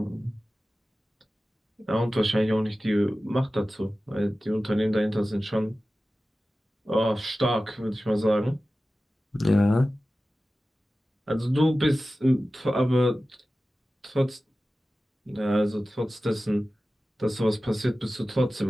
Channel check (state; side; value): normal; both; correlation 0.95